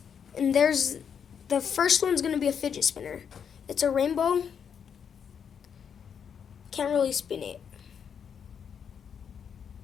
there's the first one's gonna be a fidget spinner. It's a rainbow. Can't really spin it.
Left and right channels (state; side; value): quieter; right; 7.4 dB